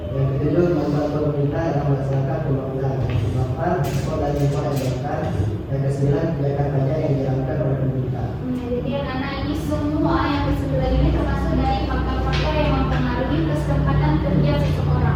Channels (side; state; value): both; identical; correlation 1.00